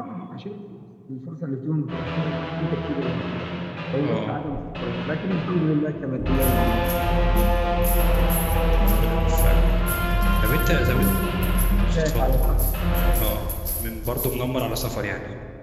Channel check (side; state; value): both; identical; correlation 1.00